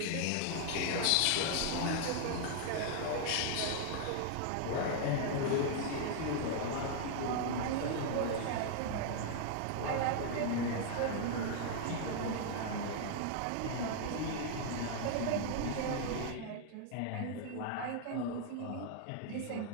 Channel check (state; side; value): different; both; correlation -0.01